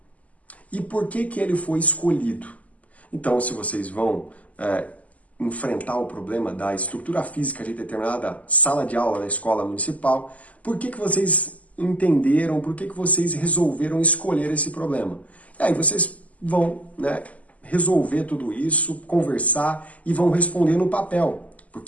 E por que ele foi escolhido? Então, se vocês vão enfrentar o problema da estrutura física de determinada sala de aula da escola municipal, por que vocês entenderam, por que vocês resolveram escolher esse problema? E aí vocês vão, né, resolver tudo isso, conversar e vão responder no papel,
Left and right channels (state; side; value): late; right; 0.072 ms